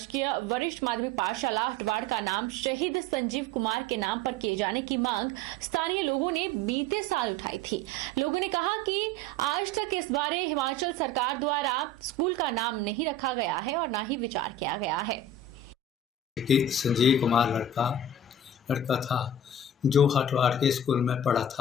वरिष्ठ माध्यमिक पाठशाला हटवाड़ का नाम शहीद संजीव कुमार के नाम पर किए जाने की मांग स्थानीय लोगों ने बीते साल उठाई थी। लोगों ने कहा कि आज तक इस बारे हिमाचल सरकार द्वारा स्कूल का नाम नहीं रखा गया है और न ही विचार किया गया है। संजीव कुमार लड़का था जो हटवाड़ के स्कूल में पढ़ा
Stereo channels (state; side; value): normal; both; correlation 0.36